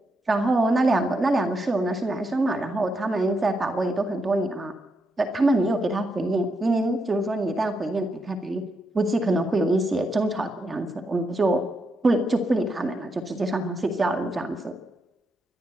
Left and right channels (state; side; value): normal; both; correlation 0.81